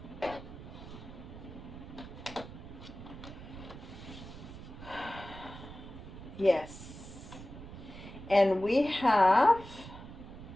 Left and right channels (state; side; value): noise; right; rumble, 13 dB below the sound